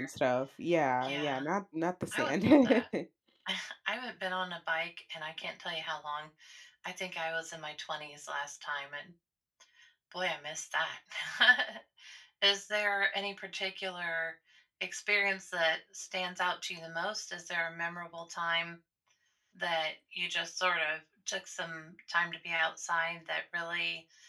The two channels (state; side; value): identical; both; correlation 1.00